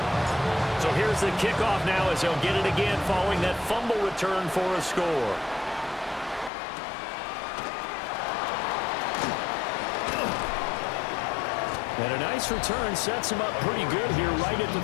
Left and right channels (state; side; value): drops out; right; at 6.5 s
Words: So here's the kickoff now as he'll get it again following that fumble return for a score. And a nice return sets him up pretty good here right at the